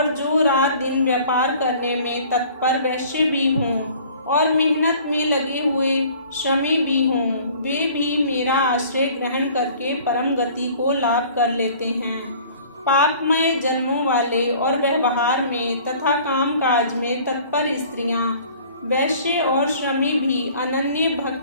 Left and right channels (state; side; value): inverted; both; correlation -0.50